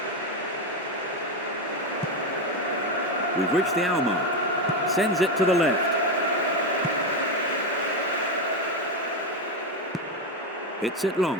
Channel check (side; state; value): both; normal; correlation 0.11